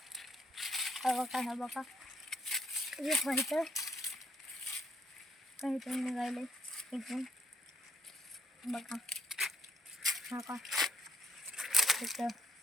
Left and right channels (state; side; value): normal; both; correlation 0.70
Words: हा बघा, हा बघा, हे व्हायचं काहीतून निघायलंय इथून बघा. हा का